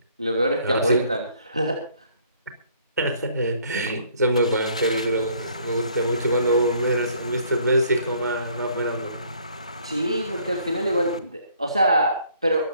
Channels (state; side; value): inverted; both; correlation -0.62